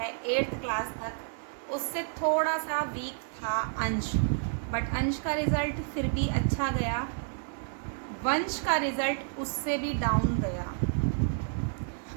8th क्लास तक, उससे थोड़ा सा वीक था अंश, बट अंश का रिज़ल्ट फिर भी अच्छा गया। वंश का रिज़ल्ट उससे भी डाउन गया।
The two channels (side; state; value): left; silent; digital silence